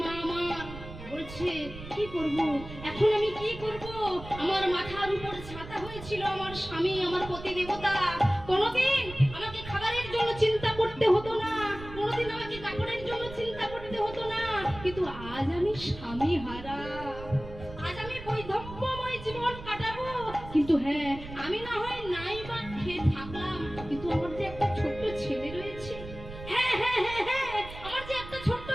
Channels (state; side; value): noise; right; rumble, 13 dB below the sound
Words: মা আমার বলছে কি করব এখন, আমি কি করব? আমার মাথার উপর ছাতা হয়েছিল আমার স্বামী, আমার পতি দেবতা। কোনোদিন আমাকে খাবারের জন্য চিন্তা করতে হতো না, কোনোদিন আমাকে কাপড়ের জন্য চিন্তা করতে হতো না, কিন্তু আজ আমি স্বামী হারা, আজ আমি বৈধব্যময় জীবন কাটাবো। কিন্তু হ্যাঁ, আমি না হয় নাই বা খেয়ে থাকলাম, কিন্তু আমার যে একটা ছোট্ট ছেলে রয়েছে, হ্যাঁ হ্যাঁ হ্যাঁ হ্যাঁ আমার যে একটা ছোট্ট